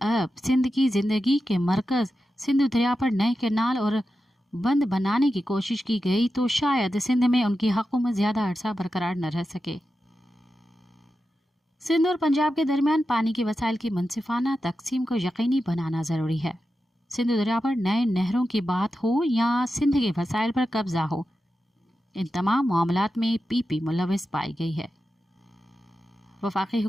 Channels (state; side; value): normal; both; correlation 0.91